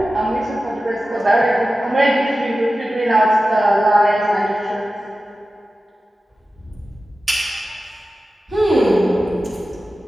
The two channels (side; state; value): both; normal; correlation 0.94